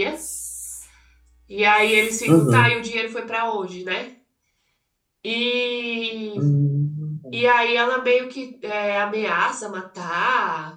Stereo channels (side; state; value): both; identical; correlation 1.00